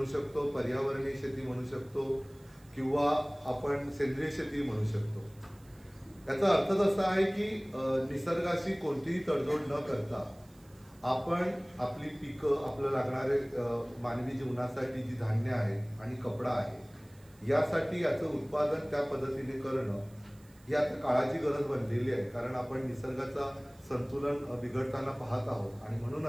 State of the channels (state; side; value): noise; right; hiss, 29 dB below the sound